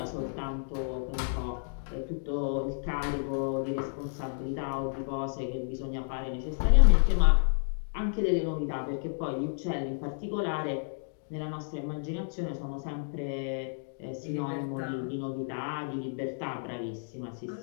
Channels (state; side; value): silent; right; digital silence